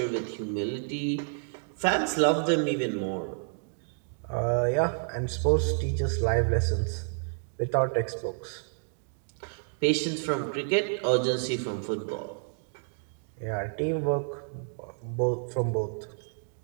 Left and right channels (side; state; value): left; silent; digital silence